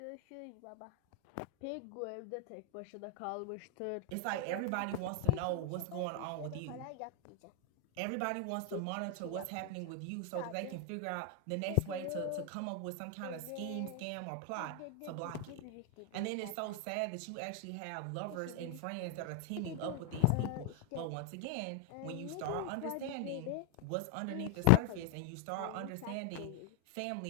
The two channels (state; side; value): different; both; correlation 0.00